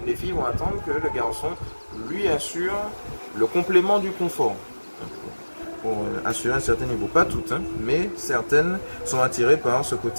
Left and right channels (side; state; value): both; inverted; correlation -1.00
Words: les filles vont attendre que le garçon lui assure le complément du confort. Pour assurer un certain niveau. Pas toutes, hein, mais certaines sont attirées par ce